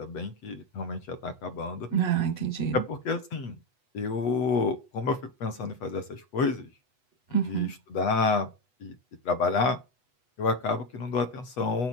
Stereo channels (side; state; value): right; late; 8.1 ms